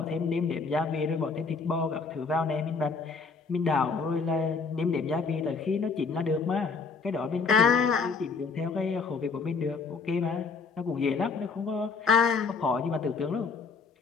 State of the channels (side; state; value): right; quieter; 4.8 dB